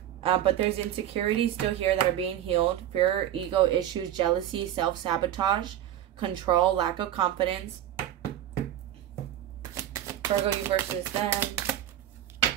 But there's insecurities still here that are being healed. Fear, ego issues, jealousy, self-sabotage, control, lack of confidence. Virgo, you versus them.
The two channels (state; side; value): quieter; left; 11.7 dB